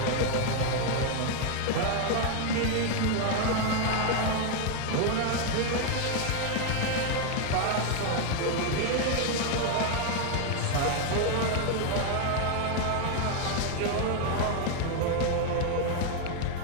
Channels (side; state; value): both; different; correlation 0.01